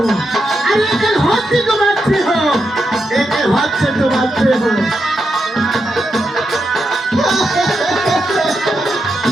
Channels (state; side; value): normal; both; correlation 0.84